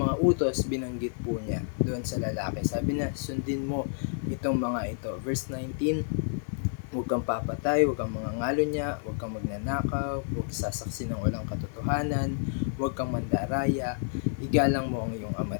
mga utos, binanggit po niya doon sa lalaki. Sabi na, sundin mo itong mga ito. Verse 19, huwag kang papatay, huwag kang mangangalo niya, huwag kang magnanakaw, huwag sasaksi ng walang katotohanan, huwag kang mandaraya, igalang mo ang iyong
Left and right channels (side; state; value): right; silent; digital silence